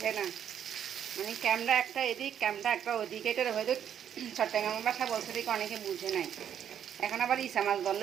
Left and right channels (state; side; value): quieter; left; 9.2 dB